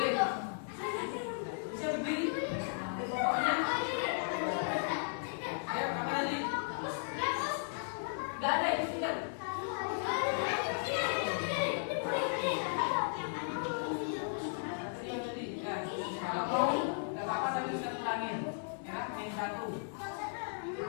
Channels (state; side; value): silent; right; 54 dB below the other